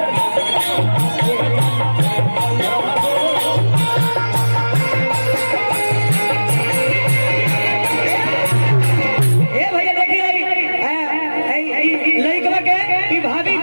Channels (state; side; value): inverted; both; correlation -1.00